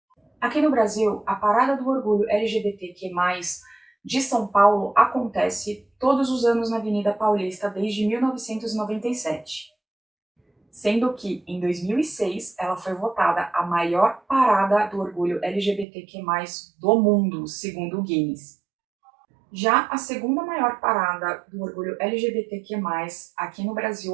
Aqui no Brasil, a Parada do Orgulho LGBTQ+, de São Paulo acontece todos os anos na Avenida Paulista desde 1997. Sendo que, em 2006, ela foi votada a maior parada do orgulho LGBTQ+, do mundo, segundo o Guinness. Já a segunda maior parada do orgulho LGBTQ+, aqui no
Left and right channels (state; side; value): drops out; left; at 15.9 s